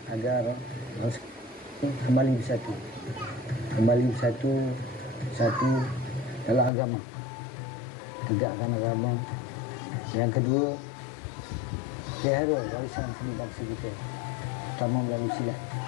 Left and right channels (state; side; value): drops out; right; at 6.7 s